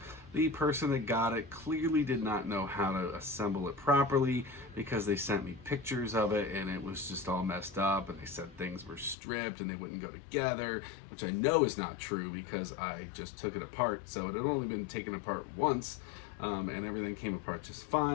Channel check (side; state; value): right; drops out; at 9.2 s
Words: The person that got it clearly did not know how to assemble it properly, because they sent me pictures of it and it was just all messed up, and they said things were stripped and they wouldn't go together, which I know is not true because I just took it apart. So it had only been taken apart once, and everything came apart just